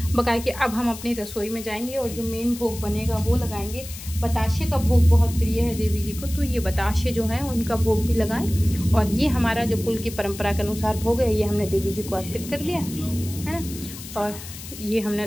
बकाया कि अब हम अपनी रसोई में जाएंगे और जो मेन भोग बनेगा वो लगाएंगे। बताशे का भोग बहुत प्रिय है देवी जी को, तो ये बताशे जो हैं उनका भोग भी लगाएं। और ये हमारा जो कुल की परंपरा के अनुसार भोग है, ये हमने देवी जी को अर्पित कर दिया है ना, और ये हमने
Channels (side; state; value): left; noise; hiss, 13 dB below the sound